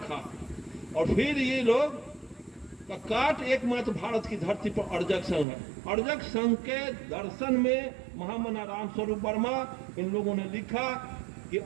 और फिर ये लोग का काट एकमात्र भारत की धरती पर अर्जक संघ है। अर्जक संघ के दर्शन में महामना राम स्वरूप वर्मा इन लोगों ने लिखा कि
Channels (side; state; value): left; drops out; at 5.5 s